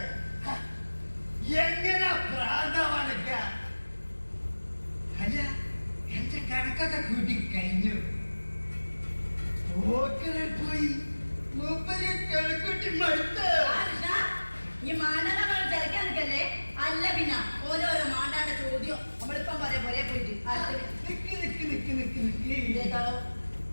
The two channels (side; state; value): both; inverted; correlation -1.00